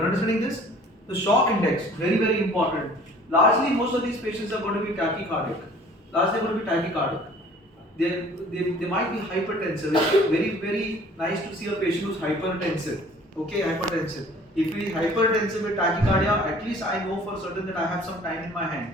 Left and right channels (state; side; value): normal; both; correlation 0.51